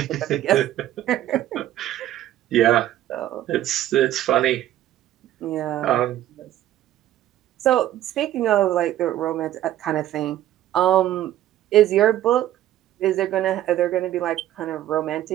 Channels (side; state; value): left; quieter; 13.1 dB